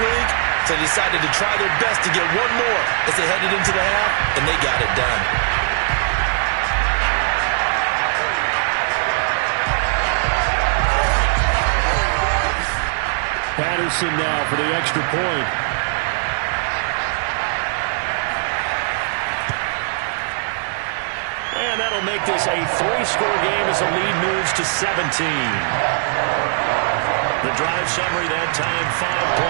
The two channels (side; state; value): left; silent; digital silence